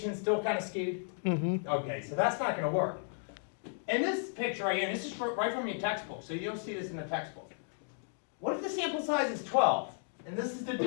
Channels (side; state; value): right; silent; digital silence